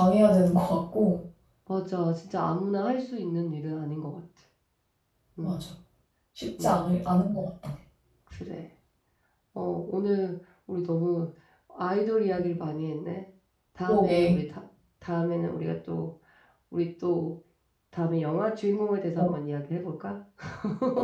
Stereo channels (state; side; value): identical; both; correlation 1.00